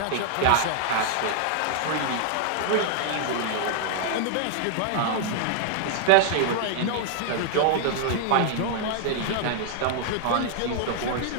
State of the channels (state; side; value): different; both; correlation 0.00